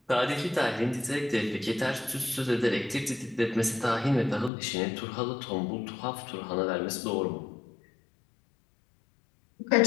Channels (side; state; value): right; drops out; at 4.5 s